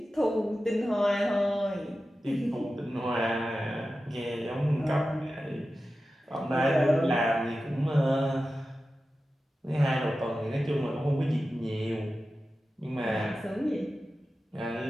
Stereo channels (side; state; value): both; normal; correlation 0.93